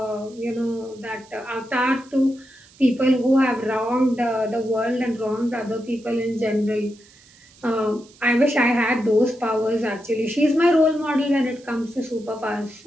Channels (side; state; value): right; noise; hiss, 26 dB below the sound